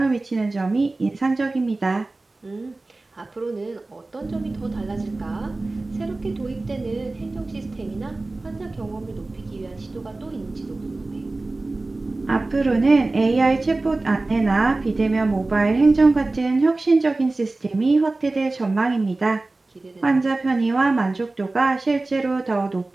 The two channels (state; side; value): quieter; left; 3.1 dB